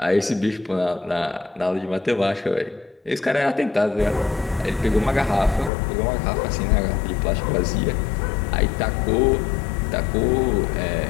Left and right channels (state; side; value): drops out; right; at 5.7 s